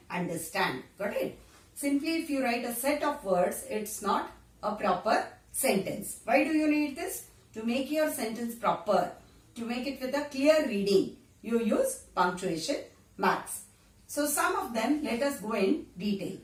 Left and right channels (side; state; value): both; identical; correlation 1.00